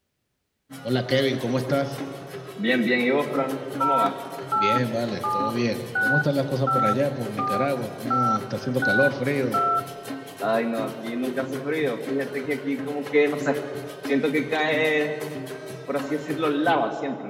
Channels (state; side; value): identical; both; correlation 1.00